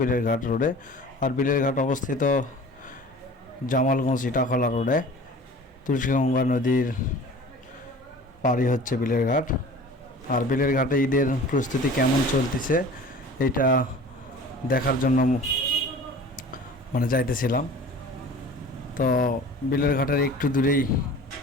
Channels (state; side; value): normal; both; correlation 0.42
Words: বিলেরঘাট রোডে। আর বিলেরঘাট অবস্থিত জামালগঞ্জ ইটাখলা রোডে। তুলসীগঙ্গা নদীর পাড়ি হচ্ছে বিলেরঘাট। আর বিলেরঘাটে ঈদের প্রস্তুতি কেমন চলতেছে এটা দেখার জন্য যাইতেছিলাম। তো বিলেরঘাটের একটু দূরেই